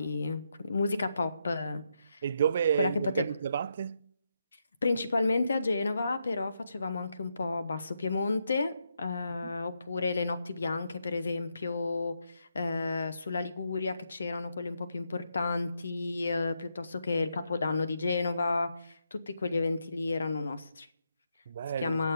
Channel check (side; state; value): both; inverted; correlation -0.81